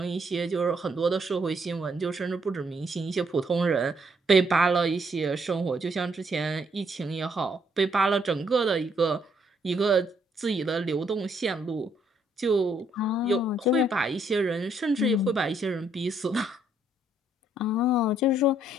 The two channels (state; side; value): normal; both; correlation 0.70